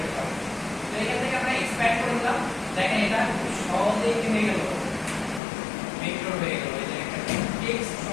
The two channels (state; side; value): drops out; right; at 5.4 s